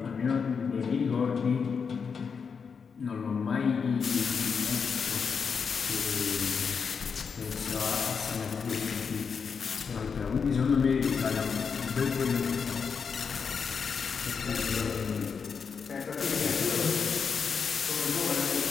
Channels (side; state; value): right; quieter; 5.9 dB